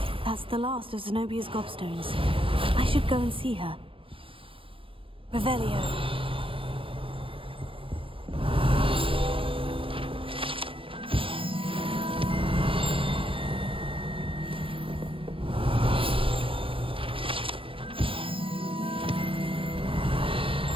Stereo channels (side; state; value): left; late; 0.26 ms